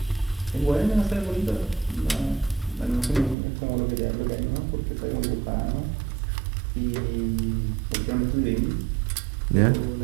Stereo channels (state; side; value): drops out; left; at 3.4 s